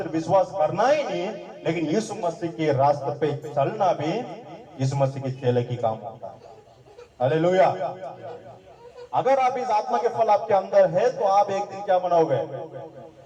विश्वास करना ही नहीं, लेकिन यीशु मसीह के रास्ते पे चलना भी यीशु मसीह के चेले की काम होता है। हालेलुया। अगर आप इस आत्मा के फल आपके अंदर है तो आप एक दिन क्या बनोगे?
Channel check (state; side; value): identical; both; correlation 1.00